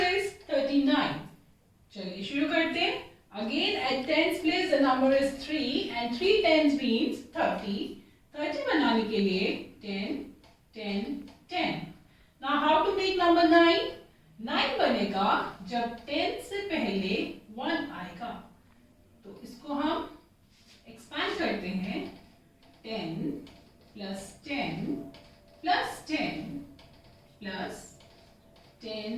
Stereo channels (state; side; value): identical; both; correlation 1.00